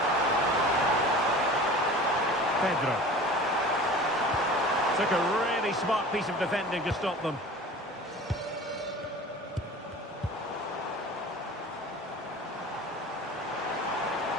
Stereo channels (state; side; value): normal; both; correlation 0.40